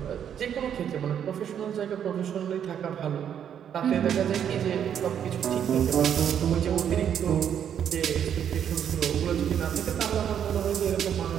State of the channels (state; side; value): quieter; left; 8.9 dB